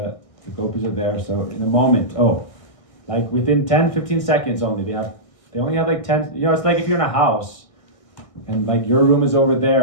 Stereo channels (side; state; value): right; late; 1.6 ms